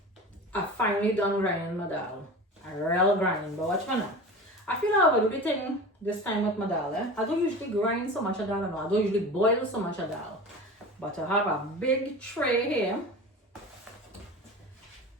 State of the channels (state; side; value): normal; both; correlation 0.33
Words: I finally done grinding my dal. I real grinding, but watch me now. I feel I will do the thing this time with my dal. I don't usually grind so much of dal, I don't usually boil so much of dal. But I have a big tray here.